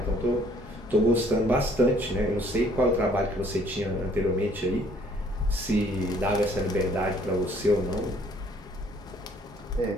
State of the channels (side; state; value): both; normal; correlation 0.61